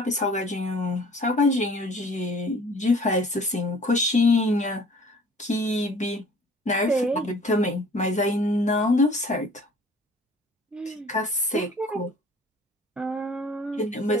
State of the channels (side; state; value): both; normal; correlation 0.50